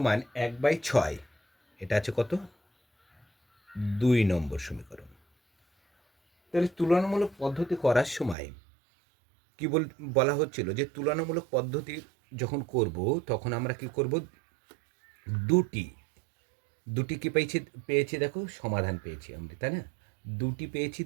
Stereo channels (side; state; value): left; drops out; at 8.3 s